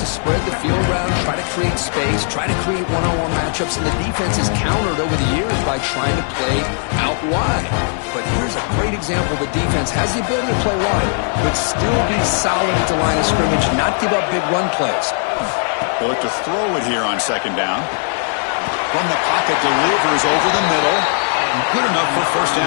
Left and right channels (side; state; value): right; silent; 57 dB below the other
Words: spread the field around, try to create space, try to create one-on-one matchups, and the defense is countered over the years by trying to play out wide. But here's a great example. The defense has the ability to play wide, but still be solid at the line of scrimmage, not give up big run plays. They'll look to throw it here on 2nd down. From the pocket, delivers over the middle. Good enough for 1st